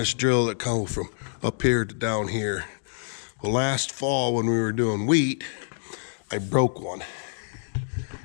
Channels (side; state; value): right; silent; digital silence